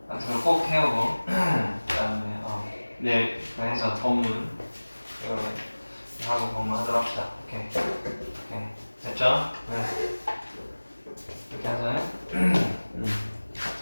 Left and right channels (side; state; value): both; inverted; correlation -1.00